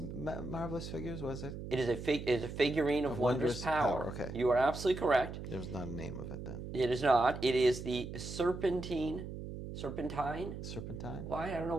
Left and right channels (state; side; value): noise; right; hum, 8 dB below the sound